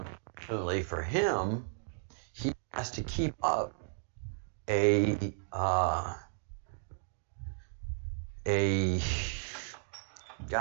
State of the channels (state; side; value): silent; left; digital silence